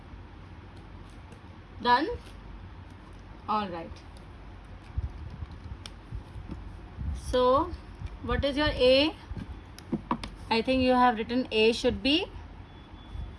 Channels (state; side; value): identical; both; correlation 1.00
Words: Done? Alright. So what is your A? I think you have written A should be